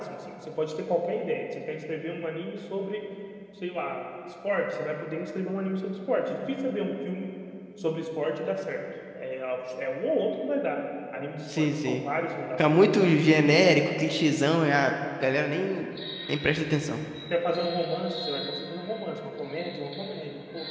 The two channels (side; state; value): both; identical; correlation 1.00